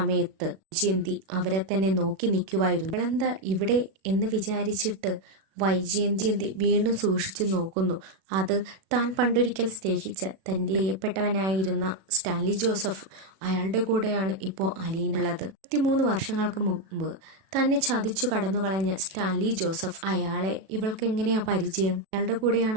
വൈജയന്തി അവരെ തന്നെ നോക്കി നിൽക്കുവായിരുന്നു. അവളെന്താ ഇവിടെ എന്ന് വിചാരിച്ചിട്ട് വൈജയന്തി വീണ്ടും സൂക്ഷിച്ചു നോക്കുന്നു. അത് താൻ പണ്ടൊരിക്കൽ സ്നേഹിച്ച തൻ്റെ പ്രിയപ്പെട്ടവനായിരുന്ന സ്റ്റാൻലി ജോസഫ്, അയാളുടെ കൂടെയാണ് ഇപ്പോൾ അലീന ഉള്ളത്. 23 വർഷങ്ങൾക്ക് മുമ്പ് തന്നെ ചതിച്ചു കടന്നുകളഞ്ഞ സ്റ്റാൻലി ജോസഫ്, അയാളെ ഇവൾക്ക് എങ്ങനെയാ പരിചയം? അയാളുടെ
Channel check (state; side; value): late; left; 37 ms